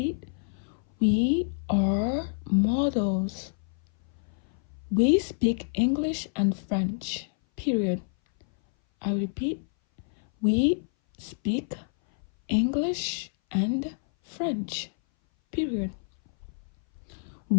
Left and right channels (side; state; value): right; silent; 58 dB below the other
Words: we are models. We speak English and French, period. I repeat, we speak English and French, period.